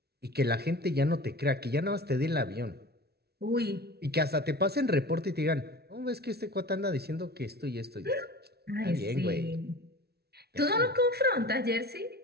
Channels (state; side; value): late; left; 0.46 ms